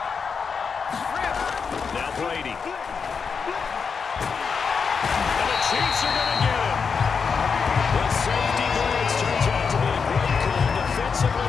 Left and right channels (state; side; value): quieter; right; 5.7 dB